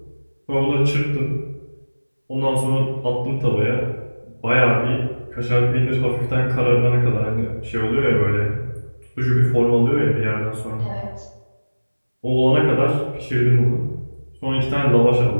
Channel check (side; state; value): both; inverted; correlation -1.00